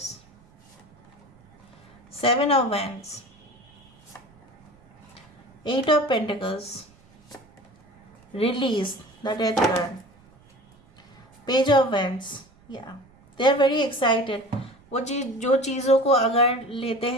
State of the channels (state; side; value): noise; right; rumble, 28 dB below the sound